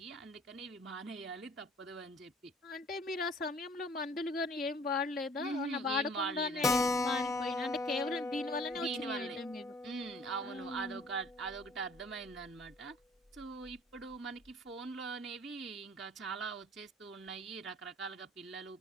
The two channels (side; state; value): both; normal; correlation 0.54